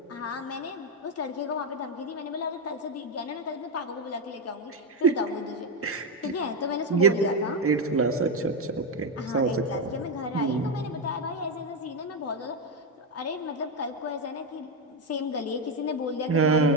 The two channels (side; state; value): both; normal; correlation 0.08